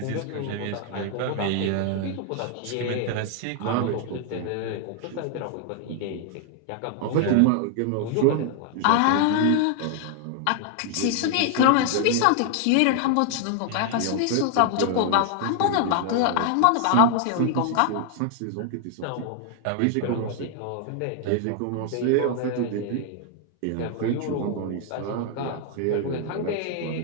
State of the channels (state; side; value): different; both; correlation 0.00